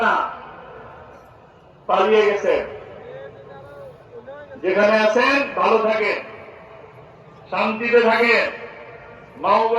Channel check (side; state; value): both; identical; correlation 1.00